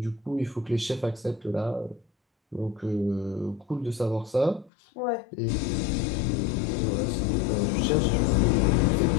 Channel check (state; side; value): drops out; right; at 4.7 s